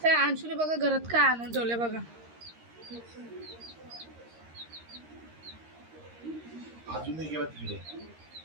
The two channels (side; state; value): left; late; 13 ms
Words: त्या अंशूने बघा घरात काय आणून ठेवले बघा.